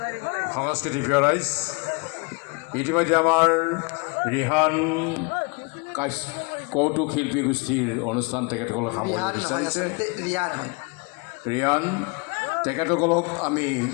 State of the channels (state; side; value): quieter; right; 30.5 dB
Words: সাংস্কৃতিক রাইজ ইতিমধ্যে আমার রিহান কৌতুক শিল্পী গোষ্ঠীর অনুষ্ঠান তেখেতসকলক সামৰিব বিচাৰিছে ৰিয়ান তেখেতসকলক আমি